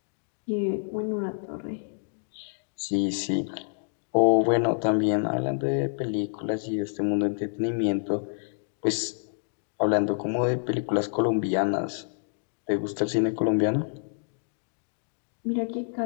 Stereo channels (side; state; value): right; silent; digital silence